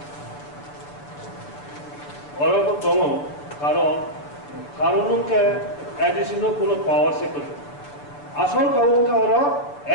ওরকম দম কারণকে এডিশনাল কোনো পাওয়ার সে করে আসল কারণকে ওরা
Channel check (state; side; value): late; right; 6.9 ms